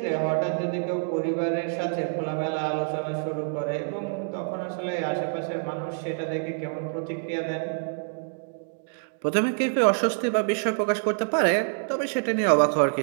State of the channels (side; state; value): left; silent; digital silence